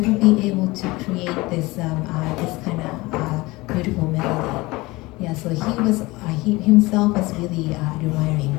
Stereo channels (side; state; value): right; quieter; 21.7 dB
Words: be able to create this kind of beautiful melody. Yeah, so he himself was really admiring